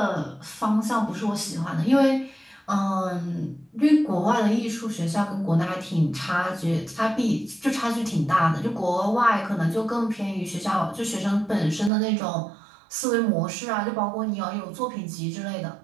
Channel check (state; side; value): drops out; left; at 11.9 s